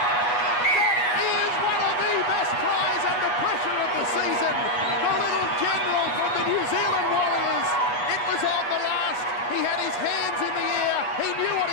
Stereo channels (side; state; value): right; late; 8.2 ms